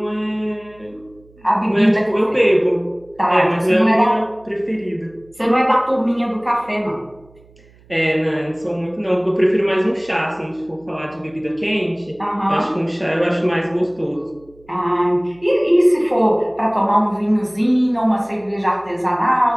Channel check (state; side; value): noise; right; hum, 28 dB below the sound